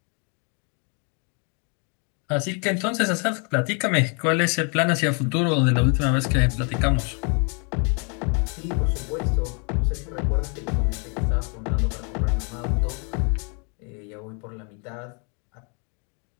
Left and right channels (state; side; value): quieter; right; 37.2 dB